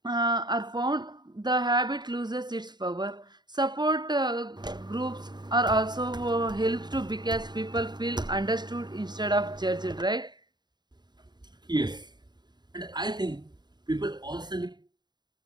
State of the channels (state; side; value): late; left; 0.21 ms